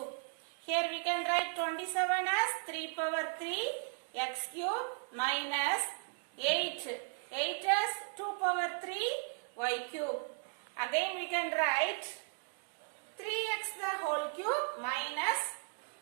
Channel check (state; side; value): silent; left; 54 dB below the other